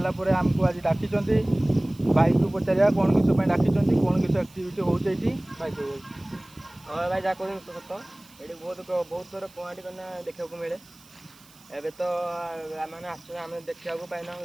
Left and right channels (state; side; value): noise; right; hiss, 25 dB below the sound